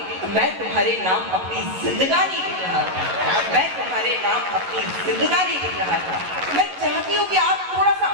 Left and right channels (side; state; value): left; late; 11 ms